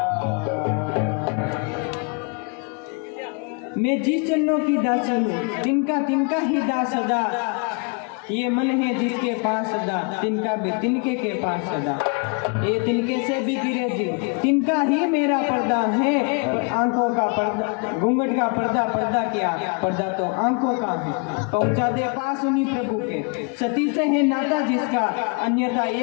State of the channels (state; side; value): quieter; right; 35.9 dB